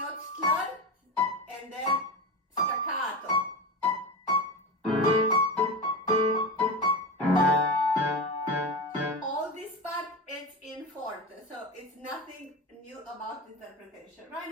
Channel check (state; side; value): normal; both; correlation 0.22